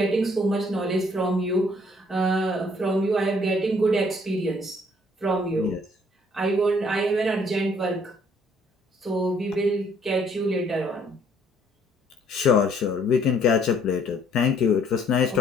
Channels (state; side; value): normal; both; correlation 0.63